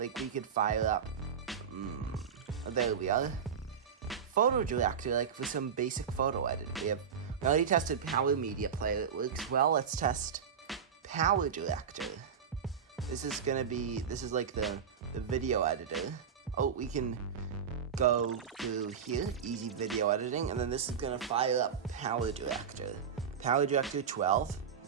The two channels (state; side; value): quieter; left; 7.2 dB